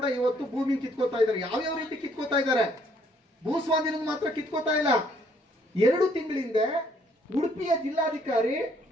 ಇವತ್ತು ಭೂಮಿ ಕಿತ್ಕೋತಾ ಇದ್ದಾರೆ. ಯಾವ್ಯಾವ ರೀತಿ ಕಿತ್ಕೋತಾ ಇದ್ದಾರೆ, ಭೂಸ್ವಾಧೀನ ಮಾತ್ರ ಕಿತ್ಕೋತಾ ಇಲ್ಲ. 2 ತಿಂಗಳಿಂದ ಉಡುಪಿಯ ಜಿಲ್ಲಾಧಿಕಾರಿ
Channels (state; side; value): normal; both; correlation 0.65